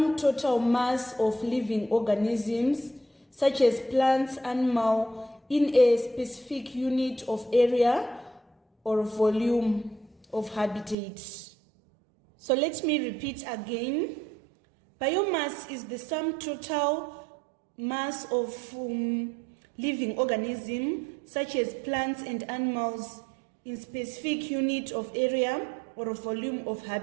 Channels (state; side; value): drops out; left; at 11.0 s